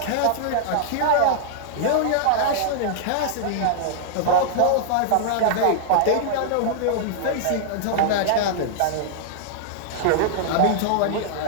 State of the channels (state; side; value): different; both; correlation -0.01